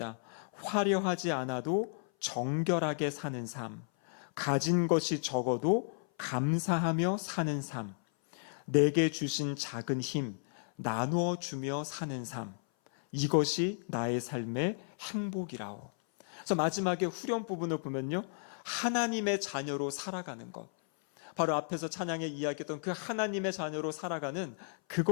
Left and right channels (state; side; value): silent; right; 55 dB below the other